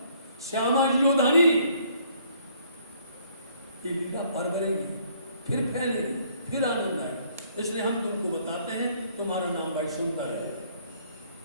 श्यामा जी और धनी। ये लीला पर करेंगी, फिर फैलेगी, फिर आनंद आएगा। इसलिए हम तुमको बताते हैं तुम्हारा नाम भाई सुंदर है।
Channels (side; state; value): both; inverted; correlation -0.63